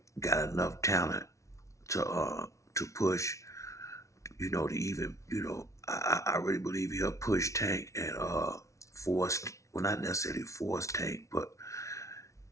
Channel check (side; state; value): right; late; 0.14 ms